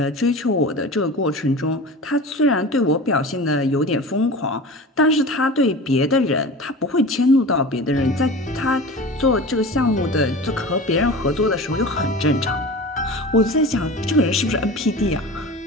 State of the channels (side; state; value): both; normal; correlation 0.34